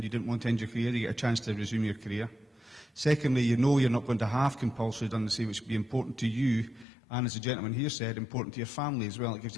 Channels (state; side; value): drops out; right; at 6.9 s